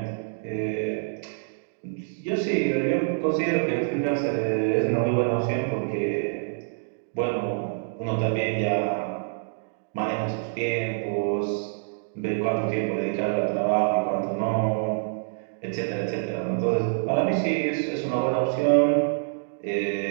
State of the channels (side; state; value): left; silent; digital silence